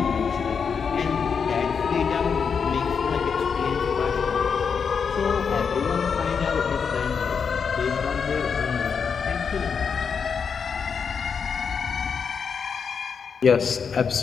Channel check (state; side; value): quieter; right; 6.2 dB